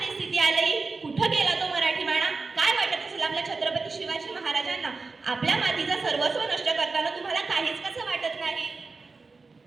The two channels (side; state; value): left; quieter; 4.1 dB